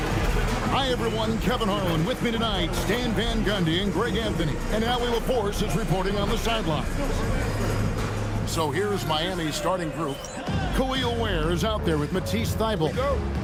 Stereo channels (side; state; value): both; identical; correlation 1.00